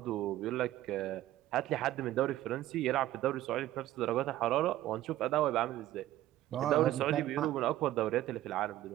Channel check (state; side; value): quieter; left; 14.5 dB